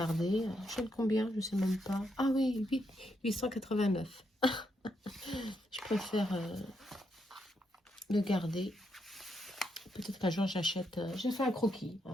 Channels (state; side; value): normal; both; correlation 0.79